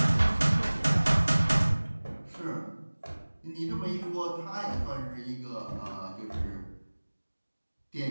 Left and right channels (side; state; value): both; inverted; correlation -1.00